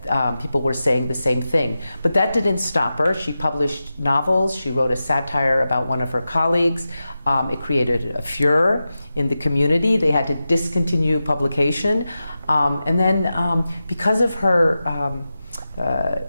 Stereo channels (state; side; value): inverted; both; correlation -0.92